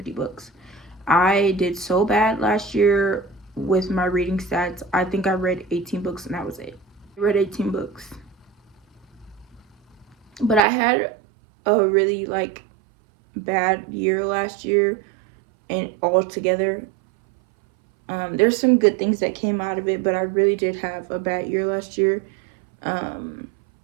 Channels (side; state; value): left; drops out; at 10.6 s